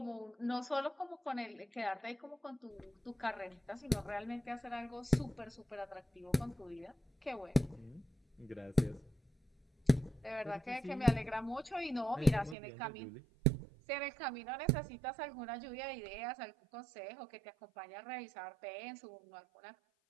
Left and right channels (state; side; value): drops out; left; at 12.6 s